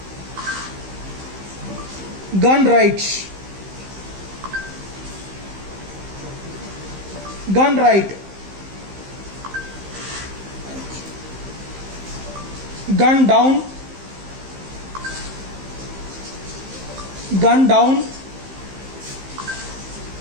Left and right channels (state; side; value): late; left; 15 ms